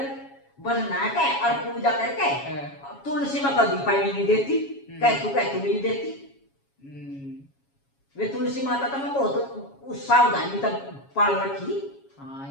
बस नहा के और पूजा करके तुलसी में कभी पानी नहीं देती, कह तू नहीं देती। वे तुलसी माता तो मैं बहुत सावधानी तक पाल रखी। हाँ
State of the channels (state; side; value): late; right; 7.2 ms